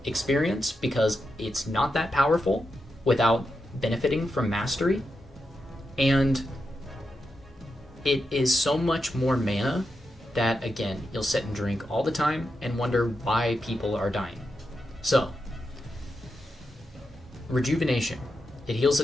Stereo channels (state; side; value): normal; both; correlation 0.87